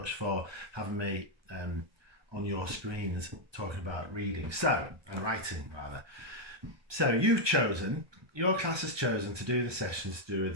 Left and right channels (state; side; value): late; left; 1.2 ms